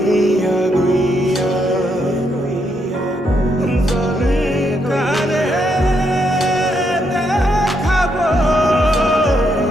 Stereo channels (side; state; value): both; normal; correlation 0.78